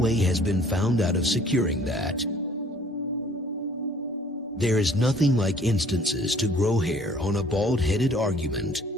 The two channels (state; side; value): normal; both; correlation 0.56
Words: has been found out of securing that. There is nothing like instances to grow hair on a bald-headed argument.